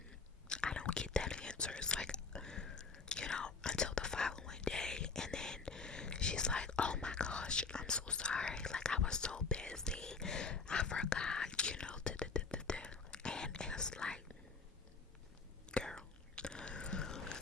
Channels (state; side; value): quieter; right; 4.6 dB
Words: I don't get that answer. It's like, until the following day, and then she's like, oh my gosh, I'm so sorry, like, I was so busy, I forgot, and it's like, girl.